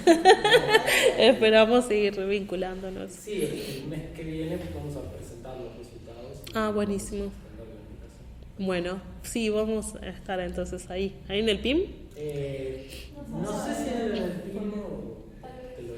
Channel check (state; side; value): identical; both; correlation 1.00